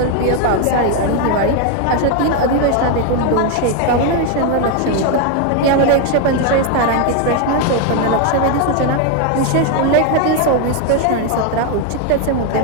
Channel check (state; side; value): different; both; correlation 0.01